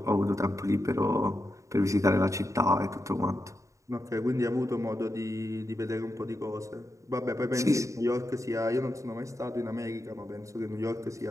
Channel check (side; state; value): left; late; 0.15 ms